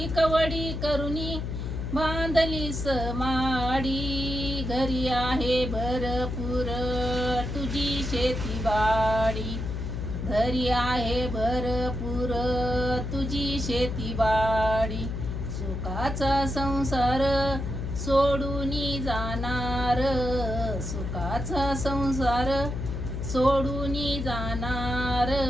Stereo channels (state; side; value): noise; left; hum, 4 dB below the sound